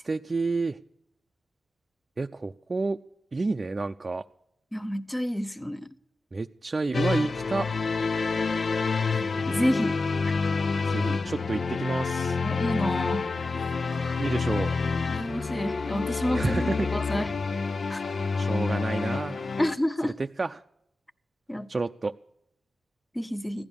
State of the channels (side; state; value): both; normal; correlation 0.92